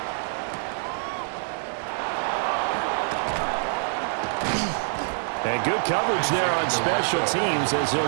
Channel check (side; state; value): left; silent; 61 dB below the other